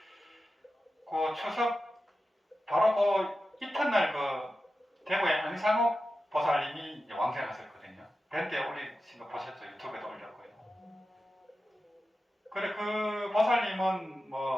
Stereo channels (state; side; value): normal; both; correlation 0.92